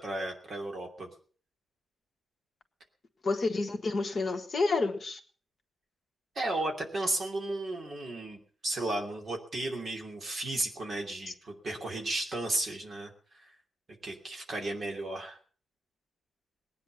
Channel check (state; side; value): normal; both; correlation 0.85